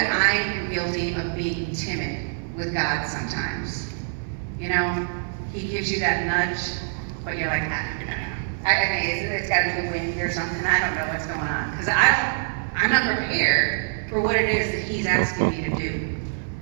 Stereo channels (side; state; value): left; silent; 62 dB below the other